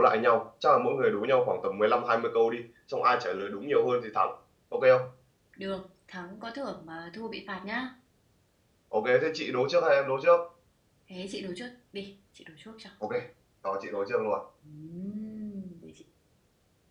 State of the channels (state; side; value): identical; both; correlation 1.00